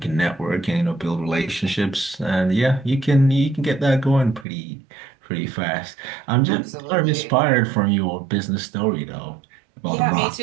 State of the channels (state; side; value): drops out; left; at 4.5 s